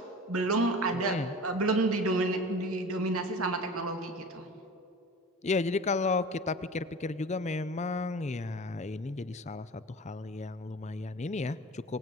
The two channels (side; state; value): both; normal; correlation 0.37